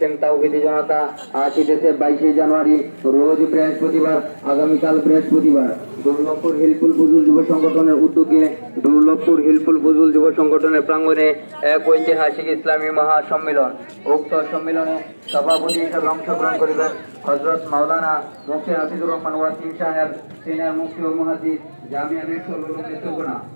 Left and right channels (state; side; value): inverted; both; correlation -1.00